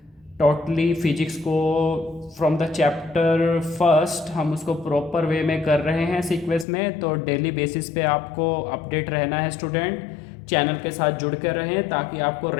टोटली फिजिक्स को फ्रॉम द चैप्टर फर्स्ट हम उसको प्रॉपर वे में कर रहे हैं सीक्वेंस में। तो डेली बेसिस पे आपको अपडेट रहना है स्टूडेंट, चैनल के साथ जुड़ कर रहें ताकि आपको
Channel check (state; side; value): drops out; right; at 6.7 s